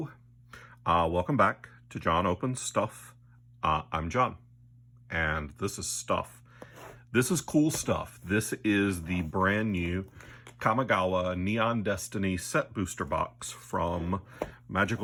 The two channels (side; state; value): both; identical; correlation 1.00